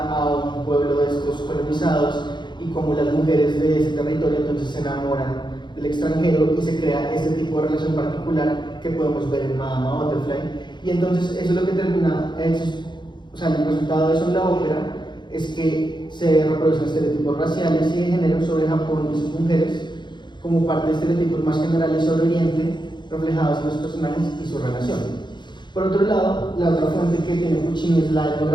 a un pueblo de estos colonizados, y como las mujeres de ese territorio entonces se enamoran del extranjero y se crea este tipo de relación particular que podemos ver en Madama Butterfly. Y entonces eso es lo que termina, o sea, el resultado de eso en la ópera es que se reproducen estereotipos raciales y de género sobre Japón y sus mujeres, como parte de estereotipos más generales sobre Oriente, reflejados en los personajes y su relación. Por otro lado, la otra fuente que tiene Puccini es la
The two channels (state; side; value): late; right; 0.22 ms